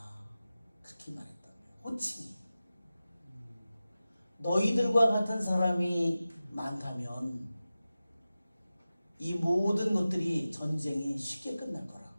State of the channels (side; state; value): both; inverted; correlation -0.95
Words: 그렇게 말했다고요. 호칭이 너희들과 같은 사람이 많다면 이 모든 것들이 전쟁이 쉽게 끝날 거라고.